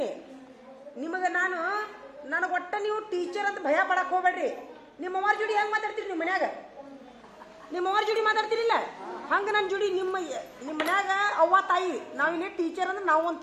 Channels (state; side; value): identical; both; correlation 1.00